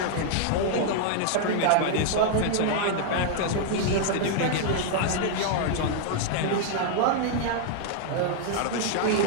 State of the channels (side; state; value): both; different; correlation 0.00